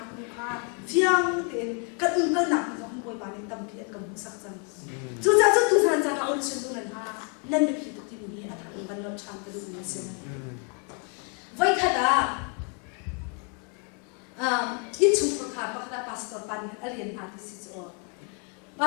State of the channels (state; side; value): quieter; right; 35.3 dB